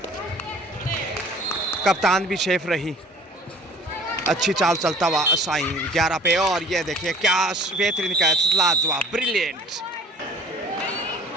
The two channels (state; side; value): normal; both; correlation 0.48